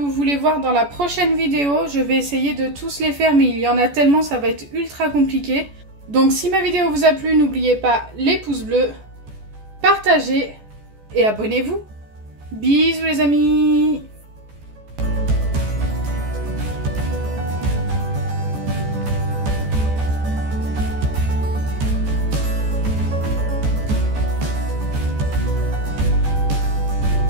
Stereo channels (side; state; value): left; late; 14 ms